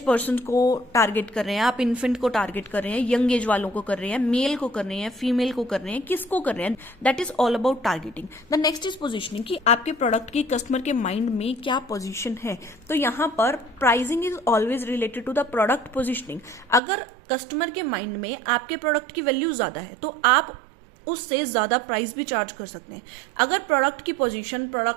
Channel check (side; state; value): left; drops out; at 16.8 s